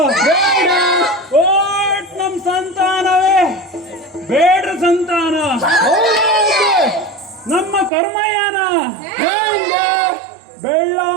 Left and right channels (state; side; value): drops out; left; at 7.9 s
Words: ಓಟ್ ನಮ್ ಸಂತಾನವೇ ಬೇಡ್ರ ಸಂತಾನ. ನಮ್ಮ ಕರ್ಮಯಾನ